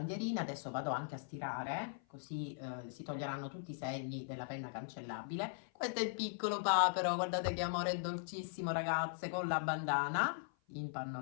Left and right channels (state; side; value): silent; right; 51 dB below the other